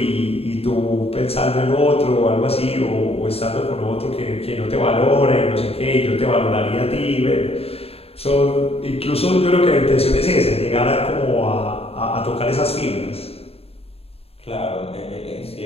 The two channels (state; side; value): late; right; 0.29 ms